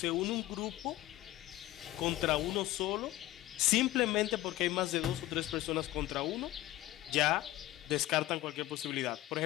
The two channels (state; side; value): quieter; right; 16.2 dB